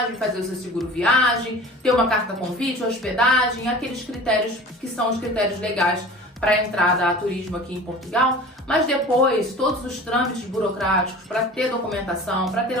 fazer o seu seguro viagem, ter uma carta convite, hospedagem, aqueles critérios que são os critérios legais para a entrada a turismo aqui em Portugal. Mas depois, todos os trâmites burocráticos para ter documentação, para ter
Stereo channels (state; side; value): normal; both; correlation 0.40